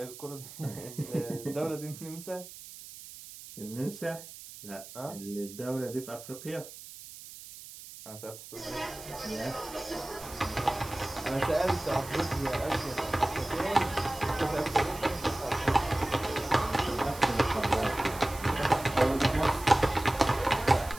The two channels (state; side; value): noise; right; hiss, 15 dB below the sound